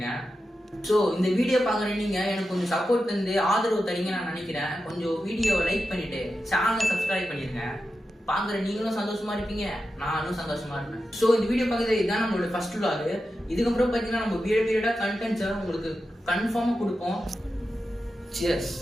ஸோ இந்த வீடியோ பார்க்குறேன் நீங்கள் எனக்கு கொஞ்சம் சப்போர்ட் தந்து ஆதரவு தரீங்க நான் நினைக்கிறேன். கொஞ்சம் வீடியோவை லைக் பண்ணிட்டு சேனலை சப்ஸ்கிரைப் பண்ணிருங்க. பார்க்குற நீங்களும் சந்தோஷமா இருப்பீங்க, நானும் சந்தோஷமா இருப்பேன். ஸோ இந்த வீடியோ பார்க்குறது இதுதான் நம்மளோட ஃபர்ஸ்ட் vlog. இதுக்கப்புறம் பார்த்தீங்கன்னா நம்ம பீரியடாக கண்டென்ட்ஸை உங்களுக்கு கன்ஃபார்மாக கொடுப்போம். சியர்ஸ்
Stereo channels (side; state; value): both; normal; correlation 0.90